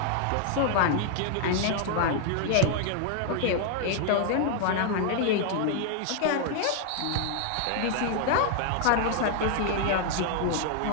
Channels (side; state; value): both; different; correlation 0.00